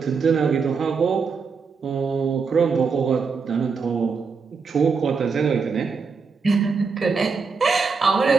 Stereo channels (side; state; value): left; quieter; 5.2 dB